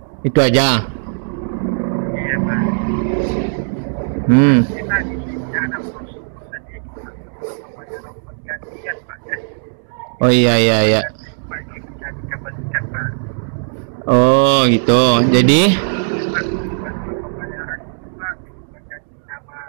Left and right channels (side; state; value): left; silent; digital silence